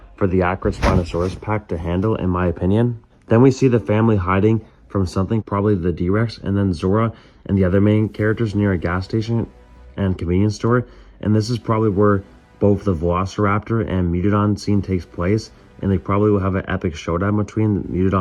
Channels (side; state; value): both; identical; correlation 1.00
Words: for the Acrid Spinosaurus pack to handle, in my opinion. Then we see the family hiding from something, probably the D-Rex, and then Zora and the other main characters near a gas station and convenience store. And this is probably where both the Velociraptor and Megalodon scene takes place, and they probably will have an epic showdown between